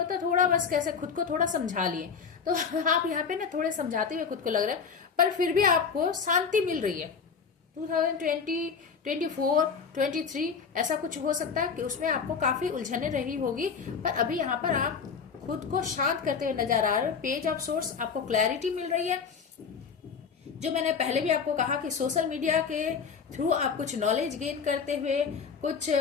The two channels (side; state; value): right; quieter; 6.0 dB